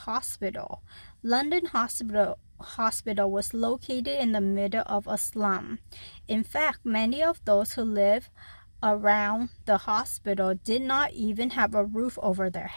London Hospital was located in the middle of a slum. In fact, many of those who lived around the hospital did not even have a roof over their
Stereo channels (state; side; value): inverted; both; correlation -1.00